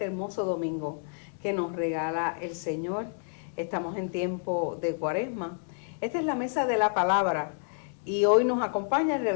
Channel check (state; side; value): silent; right; digital silence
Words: hermoso domingo que nos regala el Señor. Estamos en tiempo de Cuaresma. Esta es la mesa de la palabra y hoy nos acompaña el